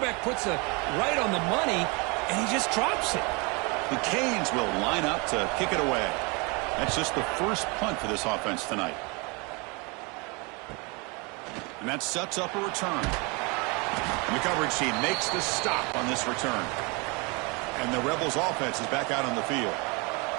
puts it right on the money, and he just drops it. The Canes will line up to kick it away. That's just the first punt for this offense tonight. And that sets up a return. And the coverage team makes the stop on this return. And the Rebels offense is back out on the field.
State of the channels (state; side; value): quieter; left; 29.7 dB